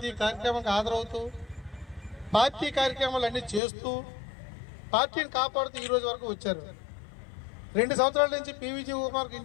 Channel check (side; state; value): right; drops out; at 3.6 s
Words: కార్యక్రమానికి హాజరవుతూ పార్టీ కార్యక్రమాలు అన్నీ చేస్తూ పార్టీని కాపాడుతూ ఈ రోజు వరకు వచ్చారు. 2 సంవత్సరాల నుంచి పివిజి కుమార్కి